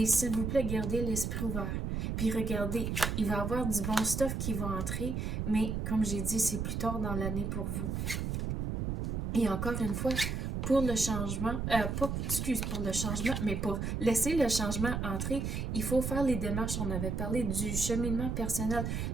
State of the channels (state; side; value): noise; right; rumble, 2 dB below the sound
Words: s'il vous plaît, gardez l'esprit ouvert. Puis regardez, il va y avoir du bon stuff qui va entrer. Mais comme j'ai dit, c'est plus tard dans l'année pour vous. Et encore une fois, pour le changement, pour le changement, mais pour laisser le changement entrer, il faut faire les démarches. On avait parlé du cheminement personnel.